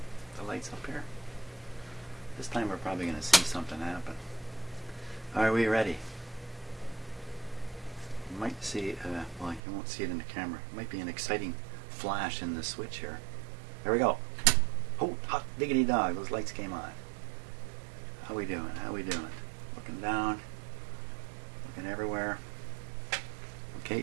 the lights up here. This time we're probably going to see something happen. Are we ready? You might see, well, you won't see it in the camera. It might be an exciting flash in the switch here. There we go. Oh, hot diggity dog, those lights came on. How we doing? How we doing? Looking down, looking everywhere.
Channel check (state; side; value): drops out; left; at 9.6 s